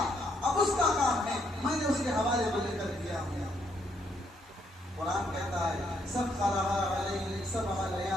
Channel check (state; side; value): normal; both; correlation 0.73